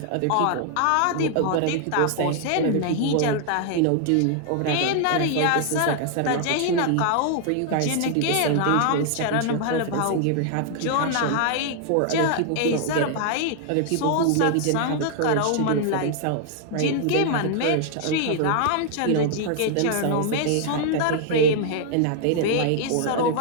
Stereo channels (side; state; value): both; different; correlation 0.00